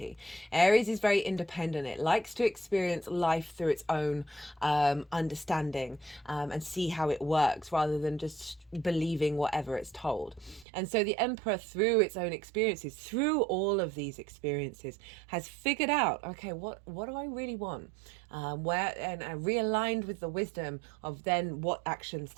Aries is very independent. It likes to experience life through its own understanding and see how it works rather than just believing whatever it's told. And so the Emperor, through its own experiences, through all of these experiences, has figured out, okay, what do I really want? And realigned with the wisdom of then what actions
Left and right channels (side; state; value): left; drops out; at 10.7 s